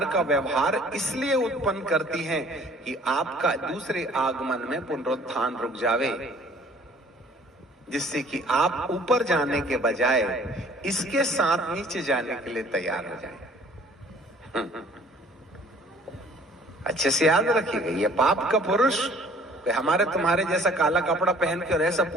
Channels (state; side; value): normal; both; correlation 0.54